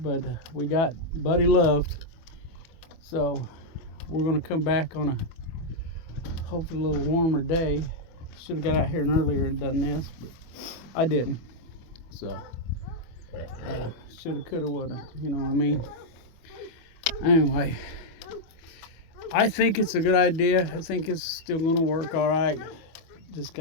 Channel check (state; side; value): late; right; 25 ms